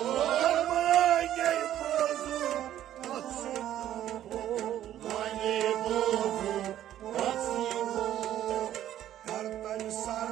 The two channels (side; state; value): left; quieter; 11.9 dB